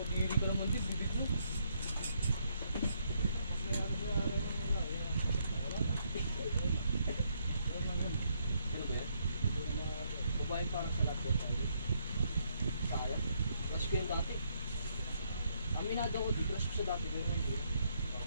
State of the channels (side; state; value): both; inverted; correlation -0.73